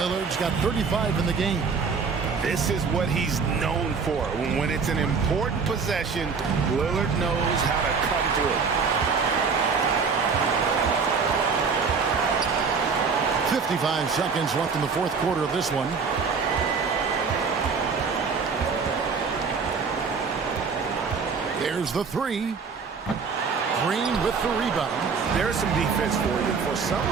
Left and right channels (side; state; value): left; quieter; 5.3 dB